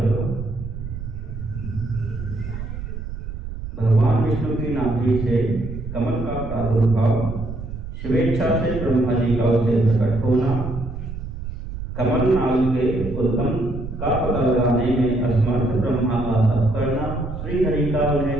भगवान विष्णु की नाभि से कमल का प्रादुर्भाव, स्वेच्छा से ब्रह्मा जी का उसे प्रकट होना, कमल नाग के उद्गम का पता लगाने में असमर्थ ब्रह्मा का तप करना, श्री हरि का उन्हें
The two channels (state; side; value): noise; right; rumble, 8 dB below the sound